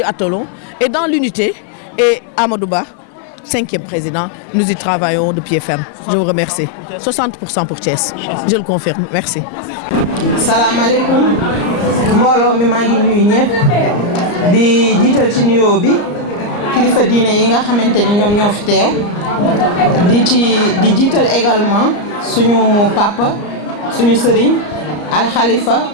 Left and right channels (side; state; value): right; late; 34 ms